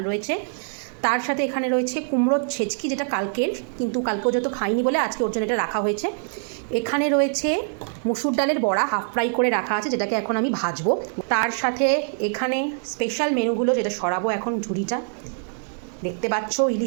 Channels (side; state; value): left; silent; 58 dB below the other